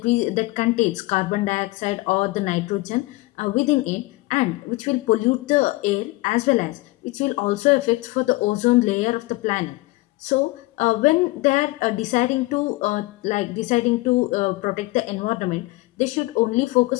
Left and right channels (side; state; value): right; quieter; 21.5 dB